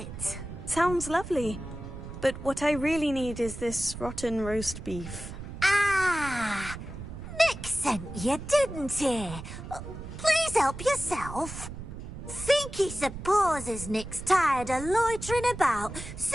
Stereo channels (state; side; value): noise; right; rumble, 10 dB below the sound